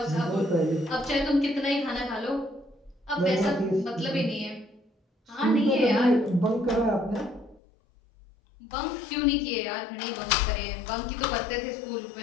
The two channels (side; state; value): right; drops out; at 7.6 s